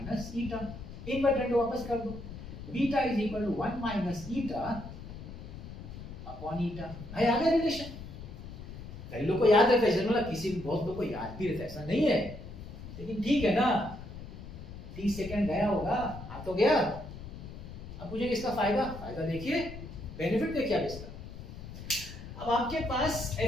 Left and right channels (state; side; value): noise; left; rumble, 12 dB below the sound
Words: eta. Inverted वापस कर दो, beta is equal to 1 minus eta upon eta. भाई आ गया रिलेशन। कई लोग को याद रहता है, मतलब किसी बहुत लोग को याद भी रहता है, ऐसा नहीं है, लेकिन ठीक है ना, 30 सेकंड गया होगा, आ तो गया। अब मुझे इसका फायदा देखिए, बेनिफिट देखिए आप इसका। अब आपके पास